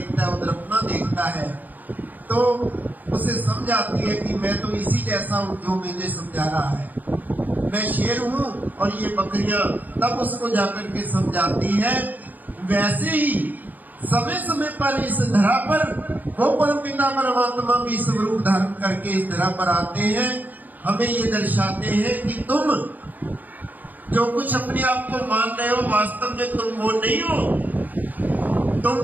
है, उधर अपना देखता है, तो उसे समझ आती है कि मैं तो इसी जैसा हूं जो मुझे समझा रहा है, मैं शेर हूं और ये बकरियां। तब उसको जाकर के समझाती है। वैसे ही समय समय पर इस धरा पर वो परमपिता परमात्मा भी स्वरूप धारण करके इस धरा पर आते हैं, हमें ये दर्शाते हैं कि तुम जो कुछ अपने आप को मान रहे हो, वास्तव में तुम वो नहीं हो। तुम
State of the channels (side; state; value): left; late; 0.083 ms